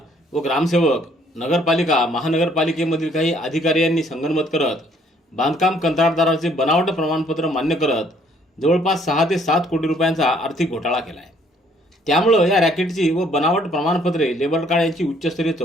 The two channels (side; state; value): both; normal; correlation 0.63